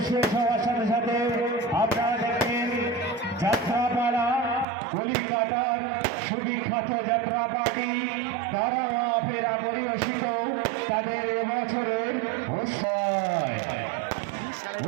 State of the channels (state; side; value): drops out; left; at 4.7 s